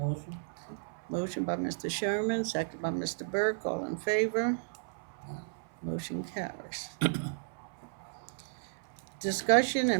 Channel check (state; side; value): silent; left; 55 dB below the other